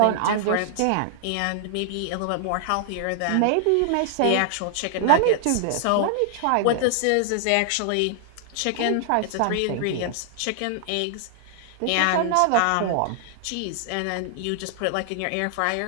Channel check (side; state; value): both; different; correlation -0.01